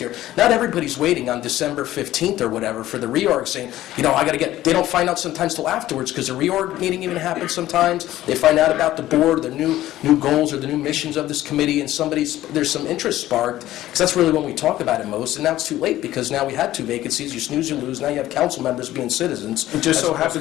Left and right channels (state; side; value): quieter; right; 14.5 dB